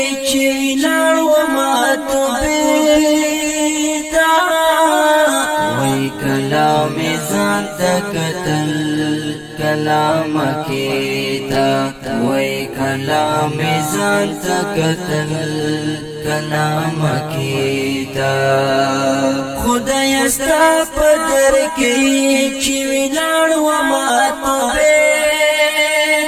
چې لاړ وما توبېدا وای کلام ځان ته کتل کلام کېدا وای کلام ځان ته کتل کلام کېدا خدای ستا په در کې چې لاړ وما توبېدا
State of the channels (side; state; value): both; identical; correlation 1.00